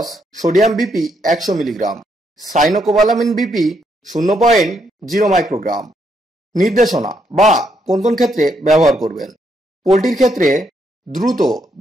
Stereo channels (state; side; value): normal; both; correlation 0.76